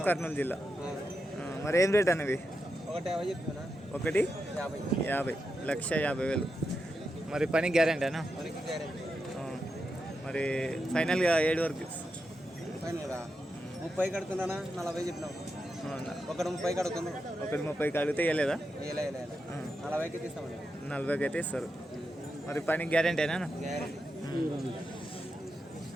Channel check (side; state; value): both; normal; correlation 0.87